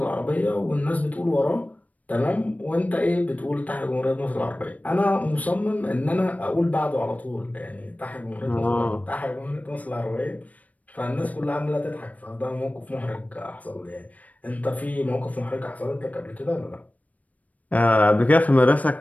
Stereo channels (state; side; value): late; right; 0.072 ms